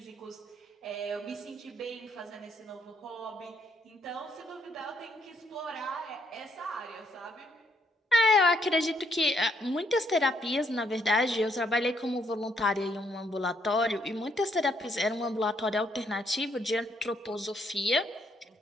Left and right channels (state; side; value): normal; both; correlation 0.72